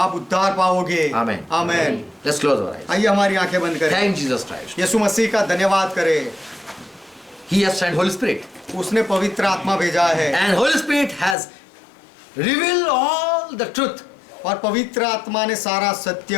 उद्धार पाओगे। Amen. Amen. Let's close our eyes. आइए हमारी आंखें बंद करें। Thank Jesus Christ. यीशु मसीह का धन्यवाद करें। He has sent Holy Spirit. उसने पवित्र आत्मा भेजा है, And Holy Spirit has revealed all the truth. और पवित्र आत्मा ने सारा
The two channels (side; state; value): right; drops out; at 11.4 s